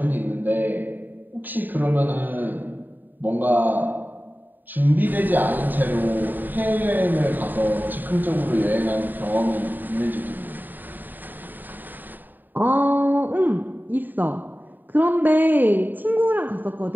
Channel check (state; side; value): late; left; 0.090 ms